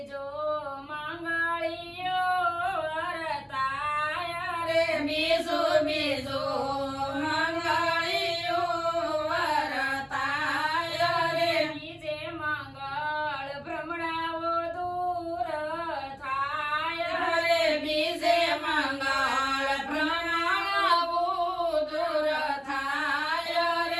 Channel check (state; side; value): identical; both; correlation 1.00